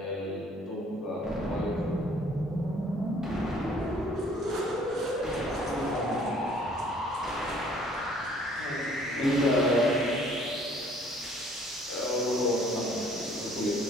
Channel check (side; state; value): both; normal; correlation 0.58